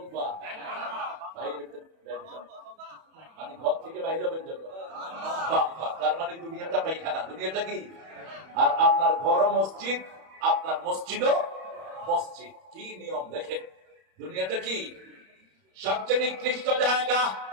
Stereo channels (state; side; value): late; left; 31 ms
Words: পা? বাইরে হইতে মানে ঘর থেকে বাইরে হবেন যখন বাম পা। তার মানে দুনিয়াটা পায়খানা, দুনিয়াটা কি? আর আপনার ঘরও মসজিদ, আপনার মসজিদও মসজিদ। কি নিয়ম দেখেন, দুনিয়াটা কি? সবচেয়ে নিকৃষ্ট জায়গা।